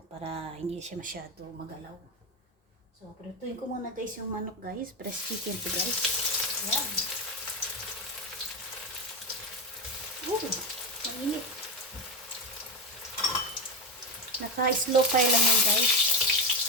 para hindi siya masyado magalaw. So, prituin ko muna guys yung manok guys, press chicken to guys. Yan. Mainit. Naka-slow fire lang yan guys.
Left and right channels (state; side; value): normal; both; correlation 0.15